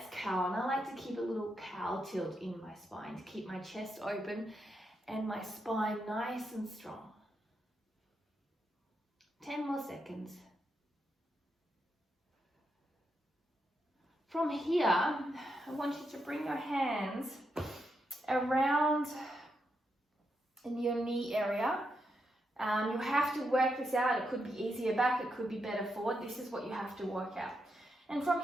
cow. And I like to keep a little cow tilt in my spine to keep my chest open and my spine nice and strong. 10 more seconds. From here, I want you to bring your hands around in your knee area. You have to work this out. It could be easier back, it could be better forward. This is what you have to work out. And from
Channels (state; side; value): normal; both; correlation 0.83